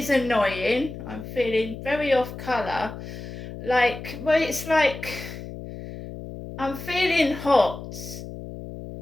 annoying. I'm feeling very off colour. It's like I'm feeling hot.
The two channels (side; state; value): left; noise; hum, 11 dB below the sound